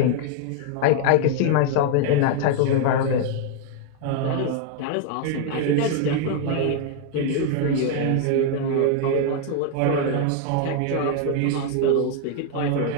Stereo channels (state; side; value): different; both; correlation 0.00